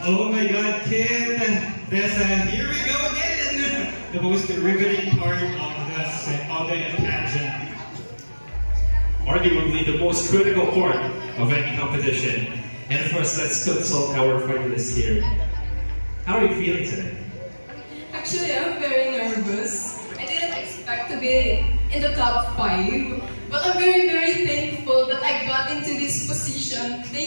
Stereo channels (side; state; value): both; inverted; correlation -1.00